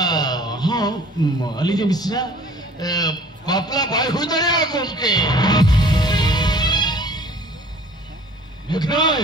हां अली जे मिश्रा बापला भाई हो जाए कौन के देखनाई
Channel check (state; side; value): normal; both; correlation 0.50